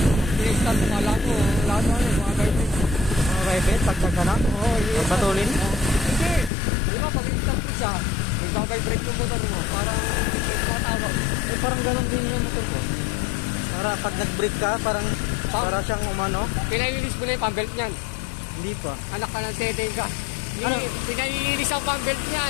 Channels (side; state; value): right; drops out; at 6.5 s